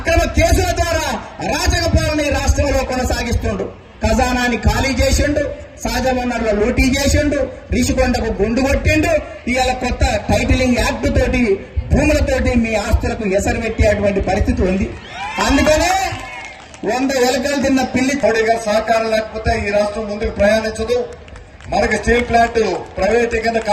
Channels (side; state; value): both; identical; correlation 1.00